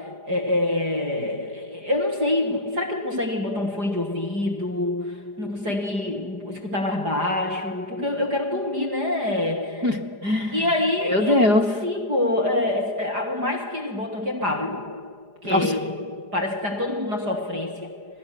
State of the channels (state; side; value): late; left; 4.9 ms